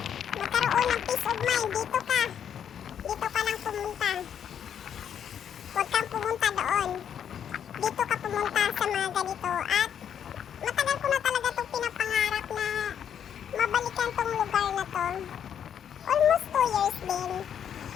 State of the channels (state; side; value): quieter; right; 8.7 dB